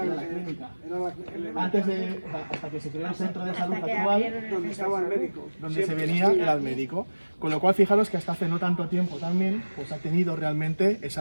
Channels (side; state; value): both; inverted; correlation -1.00